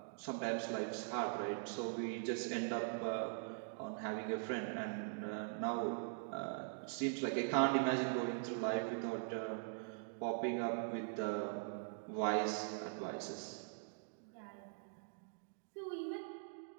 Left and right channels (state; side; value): silent; left; digital silence